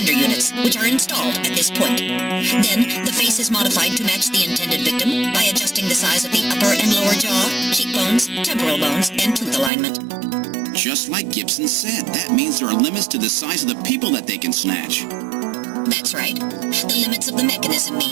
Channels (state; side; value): drops out; left; at 9.7 s